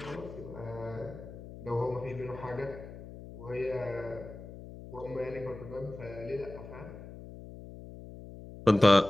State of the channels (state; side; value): noise; left; hum, 14 dB below the sound